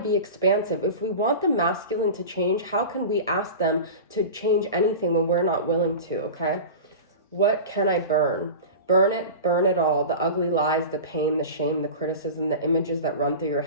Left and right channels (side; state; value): both; inverted; correlation -0.31